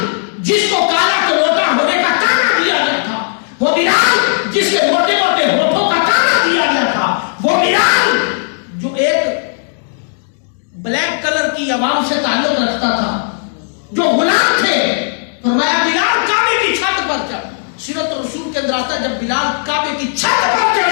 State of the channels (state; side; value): silent; right; digital silence